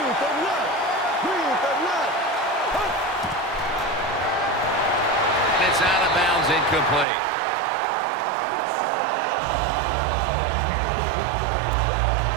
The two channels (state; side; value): drops out; left; at 7.1 s